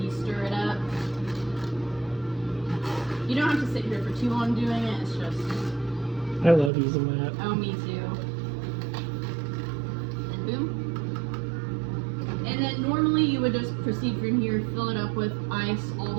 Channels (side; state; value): left; drops out; at 6.7 s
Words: stir it up. You don't have to sit here for too long doing it. It's just. I love using that. Oh, me too. And boom. And then normally you would just proceed from here, fill it up with ice all